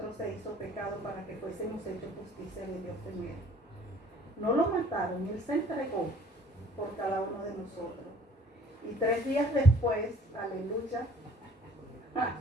se hizo pecado para que fuésemos hechos justicia de Dios en Él. No lo mataron, Él se entregó por cada uno de nosotros. Y 3 días después, aleluya,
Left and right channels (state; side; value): normal; both; correlation 0.55